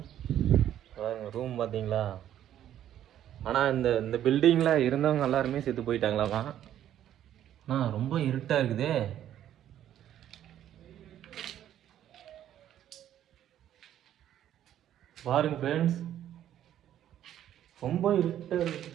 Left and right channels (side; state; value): left; quieter; 11.2 dB